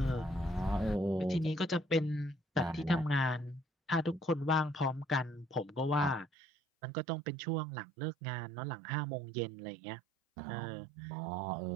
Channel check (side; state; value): left; drops out; at 6.3 s